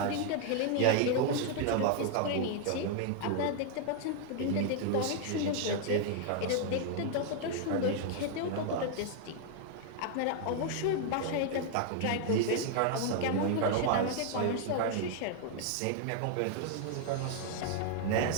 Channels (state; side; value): different; both; correlation 0.00